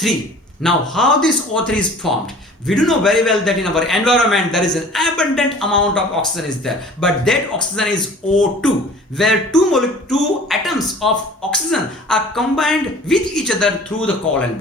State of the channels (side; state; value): both; normal; correlation 0.46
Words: Now how this O3 is formed? We do know very well that in our environment there is an abundant amount of oxygen is there, but that oxygen is O2, where two atoms of oxygen are combined with each other through the covalent